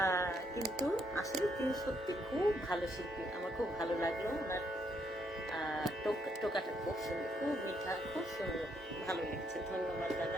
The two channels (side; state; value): both; normal; correlation 0.74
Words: কিন্তু আসলে তিনি সত্যি খুব ভালো শিল্পী, আমার খুব ভালো লাগলো। ওনার টোকাটা খুব সুন্দর, খুব মিঠা, খুব সুন্দর, ভালো লেগেছে। ধন্যবাদ